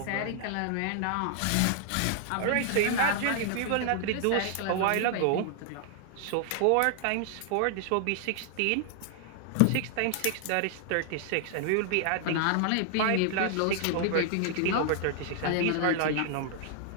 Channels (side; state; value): both; different; correlation 0.00